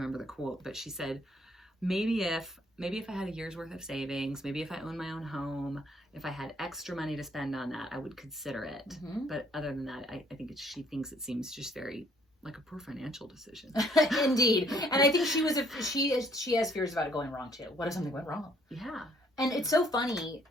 the quote, but she said, maybe if I had a year's worth of savings, maybe if I owned my own home, if I had extra money to spend on that, I would consider it. Mm-hmm. But other than that, I think she thinks it seems just very like a poor financial decision. Indeed. And I think she has fears about it going wrong too. What if something went wrong? Yeah. And it's so funny.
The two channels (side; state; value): both; normal; correlation 0.64